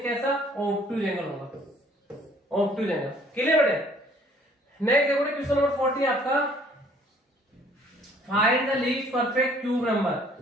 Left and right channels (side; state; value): both; normal; correlation 0.58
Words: कैसा ऑब्टूज एंगल होगा, ऑब्टूज एंगल। क्लियर बेटे। नेक्स्ट देखो क्वेश्चन नंबर 40 आपका, find the least perfect cube number